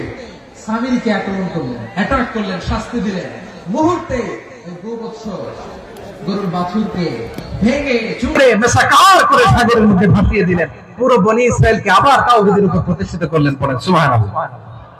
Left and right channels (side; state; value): both; identical; correlation 1.00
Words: সামিরীকে আক্রমণ করলেন, অ্যাটাক করলেন, শাস্তি দিলেন। মুহূর্তে ওই গোবৎস গরুর বাছুরকে ভেঙে চুড়ে মেসাকার করে সাগরের মধ্যে ভাসিয়ে দিলেন। পুরো বনি ইসরায়েলকে আবার তাওহীদের উপর প্রতিষ্ঠিত করলেন। পড়েন সুবহানাল্লাহ।